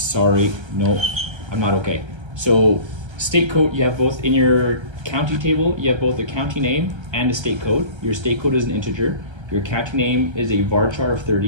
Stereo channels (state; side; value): late; left; 1.3 ms